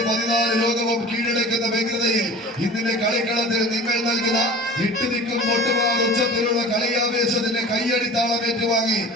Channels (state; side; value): normal; both; correlation 0.39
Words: 14 ലോകവും കീഴടക്കുന്ന വ്യഗ്രതയിൽ ഇന്നിന്റെ കളിക്കളത്തിൽ നിങ്ങൾ നൽകുന്ന ഇട്ടുനിൽക്കും പൊട്ടുമാർ ഉച്ചത്തിലുള്ള കളിയാവേശത്തിന്റെ കയ്യടിത്താളം ഏറ്റുവാങ്ങി